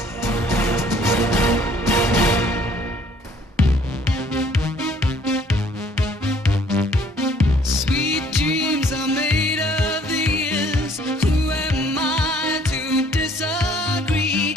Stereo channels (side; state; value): both; normal; correlation 0.59